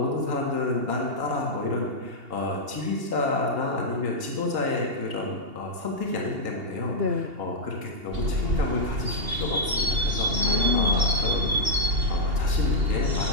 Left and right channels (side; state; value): left; late; 2.8 ms